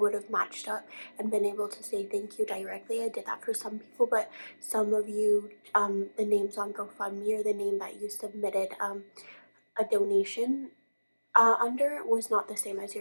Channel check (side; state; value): both; inverted; correlation -1.00